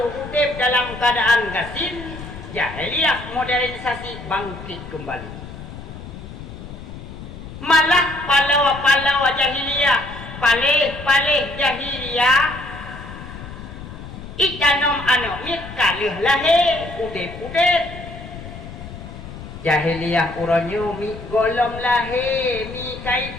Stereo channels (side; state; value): left; noise; rumble, 12 dB below the sound